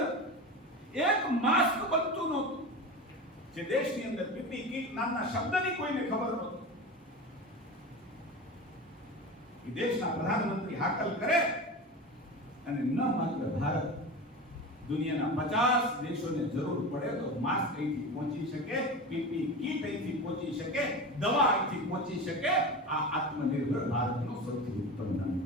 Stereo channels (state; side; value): normal; both; correlation 0.27